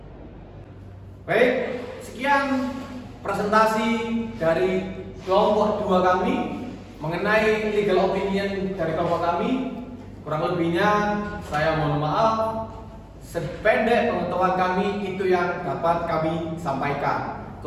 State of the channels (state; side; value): identical; both; correlation 1.00